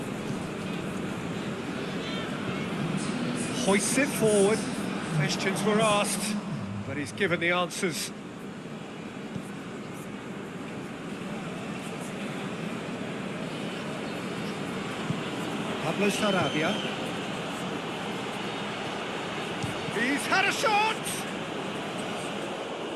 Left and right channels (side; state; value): both; identical; correlation 1.00